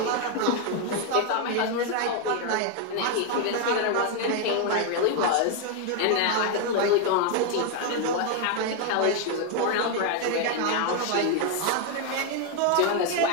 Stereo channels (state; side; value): different; both; correlation 0.01